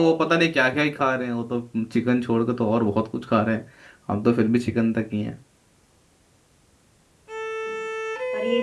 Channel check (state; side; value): identical; both; correlation 1.00